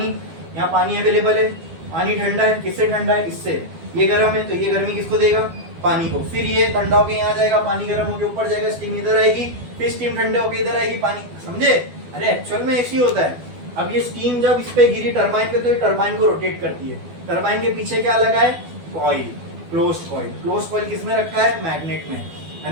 यहाँ पानी अवेलेबल है, पानी ठंडा है, किससे ठंडा है? इससे। ये गर्म है, तो ये गर्मी किसको देगा? पानी को। फिर ये ठंडा होके यहाँ जाएगा, पानी गर्म होके ऊपर जाएगा, स्टीम इधर आएगी, फिर स्टीम ठंडे होके इधर आएगी, पानी। समझे? अरे एक्चुअल में ऐसी होता है। अब ये स्टीम जब इस पे गिरी टरबाइन पे, तो ये टरबाइन को रोटेट करती है। टरबाइन के पीछे क्या लगा है? Coil, closed coil. Closed coil किसमें रखा है? मैग्नेट में, है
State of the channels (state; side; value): late; left; 12 ms